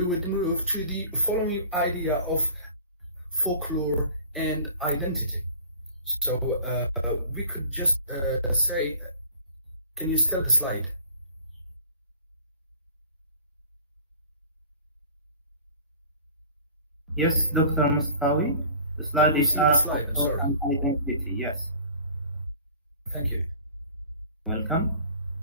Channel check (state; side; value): inverted; both; correlation -0.45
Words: would move to the following idea of folklore and identity. So we could just say, can you start the slide? Yes, Dr. Mustawi. The slide is see the up slide, I'm for sorry. an identity. Yes. Thank you. Welcome.